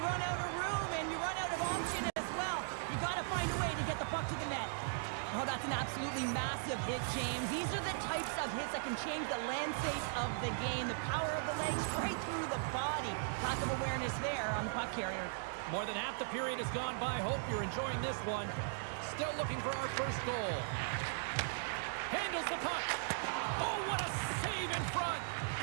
run out of room, and you run out of option as well. You got to find a way to get the puck to the net. Oh, that's an absolutely massive hit, James. These are the types of hits that can change the landscape of the game. The power of the legs right through the body. Lack of awareness there on the puck carrier. More than half the period has gone by. Hope you're enjoying this one. Still looking for our first goal. Handles the puck. Oh, what a save in front.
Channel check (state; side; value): silent; left; digital silence